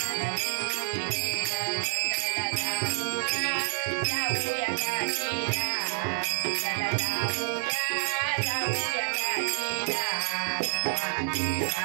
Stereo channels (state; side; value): silent; left; 59 dB below the other